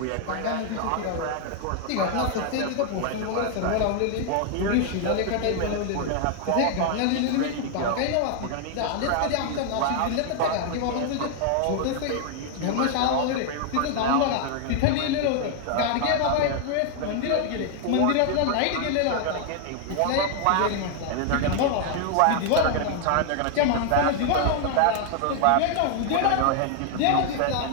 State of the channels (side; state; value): both; different; correlation 0.00